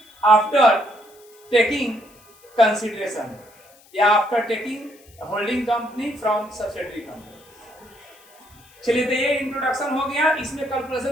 after taking consideration, या after taking holding company from subsidiary company. चलिए, तो ये इंट्रोडक्शन हो गया, इसमें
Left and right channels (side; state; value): left; noise; hiss, 27 dB below the sound